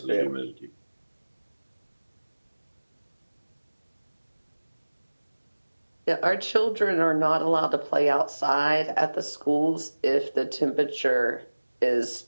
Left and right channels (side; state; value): both; inverted; correlation -1.00